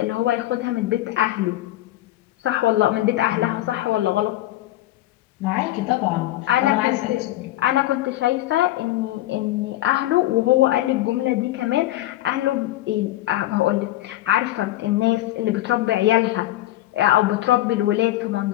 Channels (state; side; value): quieter; right; 15.4 dB